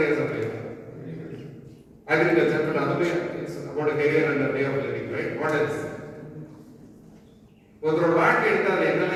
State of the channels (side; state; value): both; identical; correlation 1.00